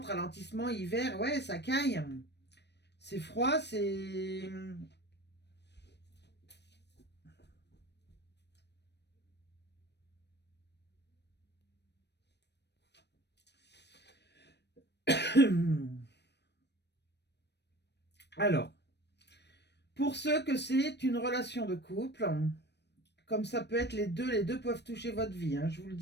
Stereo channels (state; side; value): late; right; 0.50 ms